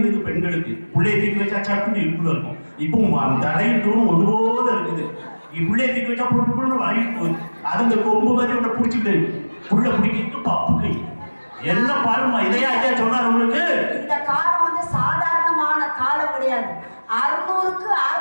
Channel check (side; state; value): both; inverted; correlation -1.00